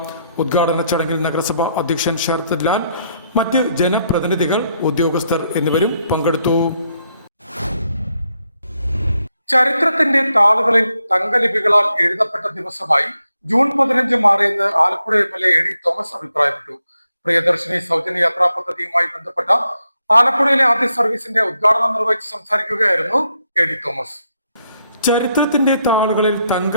ഉദ്ഘാടന ചടങ്ങിൽ നഗരസഭ അധ്യക്ഷൻ ശരത് ലാൽ, മറ്റ് ജനപ്രതിനിധികൾ, ഉദ്യോഗസ്ഥർ എന്നിവരും പങ്കെടുത്തു. ചരിത്രത്തിന്റെ താളുകളിൽ തങ്കലിപികളാൽ എഴുതപ്പെട്ട ദിവസമായി ജൂൺ 15 മാറിയെന്ന് ആലപ്പുഴ MLA AD തോമസ് അഭിപ്രായപ്പെട്ടു. പ്രിയദർശിനി സൗജന്യ യാത്രാ പദ്ധതിയുമായി ബന്ധപ്പെട്ട ആലപ്പുഴയിലെ ആദ്യ സർവീസിന്റെ ഉദ്ഘാടനം നിർവഹിച്ച് സംസാരിക്കുകയായിരുന്നു AD തോമസ്. ചരിത്രത്തിന്റെ താളുകളിൽ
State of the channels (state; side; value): inverted; both; correlation -0.78